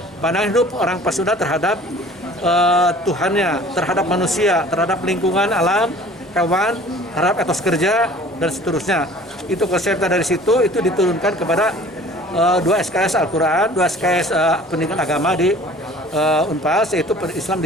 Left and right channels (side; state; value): both; normal; correlation 0.48